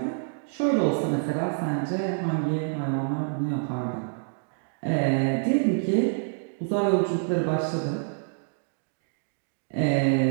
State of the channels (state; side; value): silent; left; digital silence